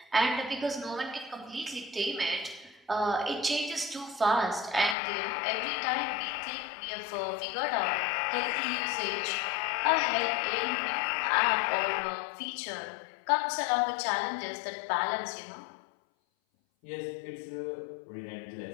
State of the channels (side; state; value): right; drops out; at 5.0 s